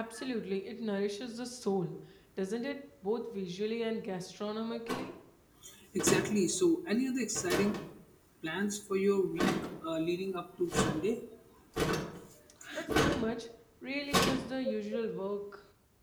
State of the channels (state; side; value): identical; both; correlation 1.00